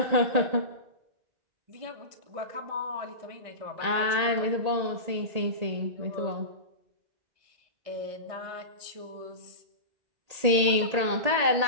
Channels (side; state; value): left; late; 1.8 ms